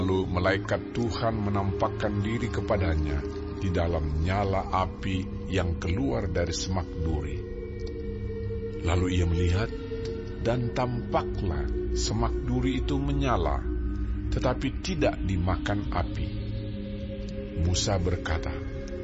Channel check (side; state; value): both; identical; correlation 1.00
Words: malaikat Tuhan menampakkan diri kepadanya di dalam nyala api yang keluar dari semak duri. Lalu ia melihat, dan tampaklah semak duri itu menyala, tetapi tidak dimakan api. Musa berkata,